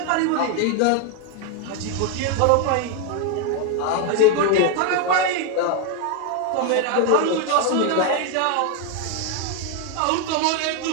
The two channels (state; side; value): different; both; correlation 0.01